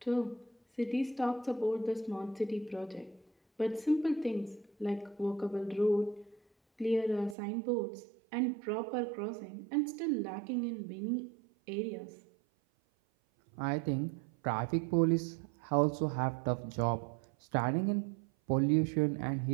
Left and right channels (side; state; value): left; drops out; at 7.4 s